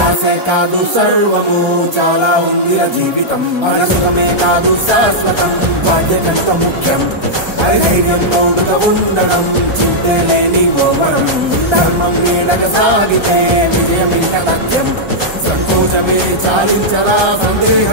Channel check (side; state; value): left; late; 1.3 ms